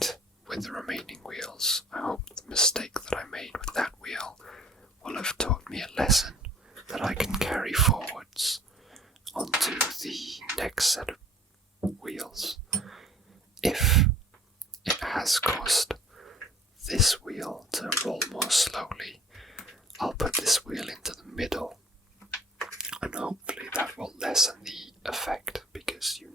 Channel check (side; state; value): both; normal; correlation 0.50